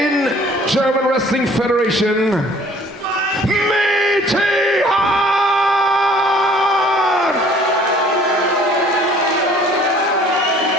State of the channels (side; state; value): both; normal; correlation 0.55